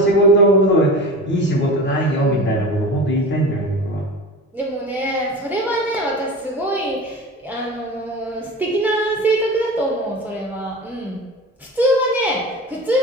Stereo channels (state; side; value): normal; both; correlation 0.32